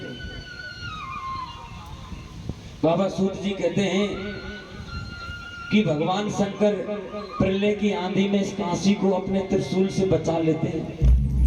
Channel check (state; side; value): identical; both; correlation 1.00